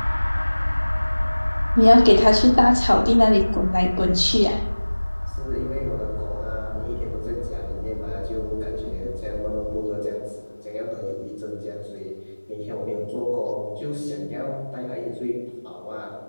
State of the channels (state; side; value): inverted; both; correlation -1.00